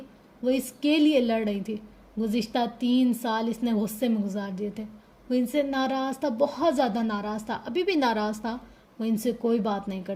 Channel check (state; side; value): identical; both; correlation 1.00